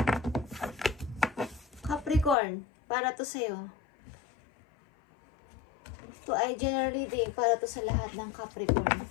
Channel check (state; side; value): drops out; right; at 2.4 s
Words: Capricorn, para to sa'yo. Ito ay general reading para to sa lahat ng